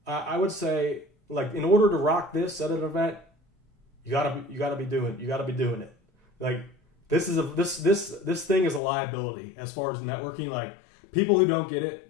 would say, like, in order to rock this at an event, you gotta be doing it. Like, this thing is a liability as far as networking. Like, people who don't get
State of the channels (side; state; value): right; drops out; at 8.8 s